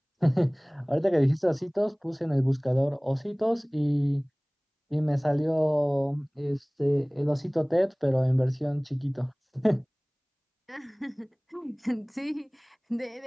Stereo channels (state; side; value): identical; both; correlation 1.00